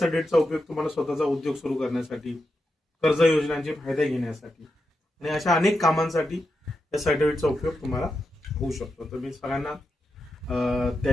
उपयोग तुम्हाला स्वतःचा उद्योग सुरू करण्यासाठी, कर्ज योजनांचे फायदे घेण्यासाठी आणि अशा अनेक कामांसाठी या सर्टिफिकेटचा उपयोग तुम्हाला होऊ शकतो. तर मी सगळ्यांना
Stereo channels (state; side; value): normal; both; correlation 0.87